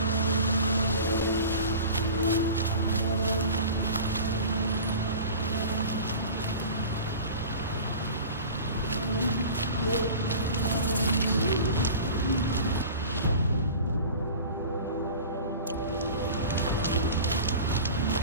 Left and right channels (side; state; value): both; inverted; correlation -0.37